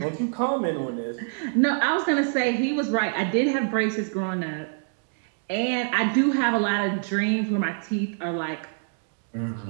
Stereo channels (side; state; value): left; silent; 61 dB below the other